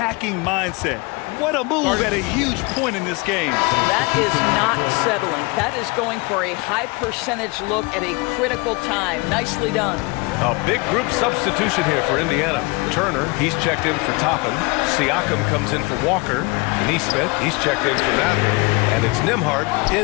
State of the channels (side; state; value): right; quieter; 27.2 dB